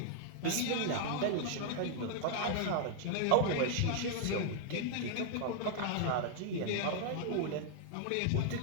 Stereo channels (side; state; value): both; different; correlation 0.00